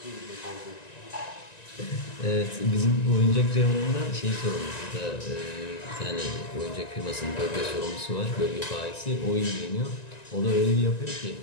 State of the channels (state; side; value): late; right; 1.9 ms